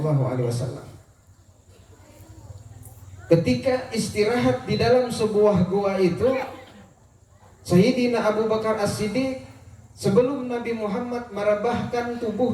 Ketika istirahat di dalam sebuah gua itu, Sayyidina Abu Bakar As-Siddiq sebelum Nabi Muhammad merebahkan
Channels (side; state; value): both; identical; correlation 1.00